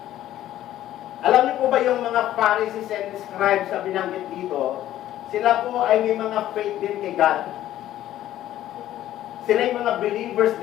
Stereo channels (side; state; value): right; quieter; 13.1 dB